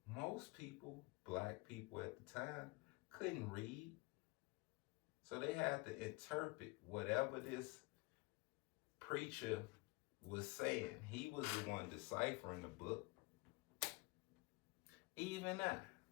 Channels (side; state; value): right; quieter; 26.2 dB